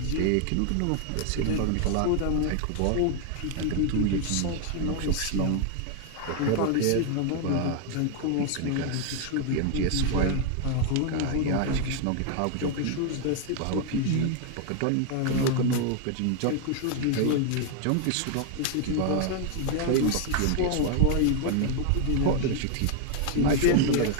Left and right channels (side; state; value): both; different; correlation 0.00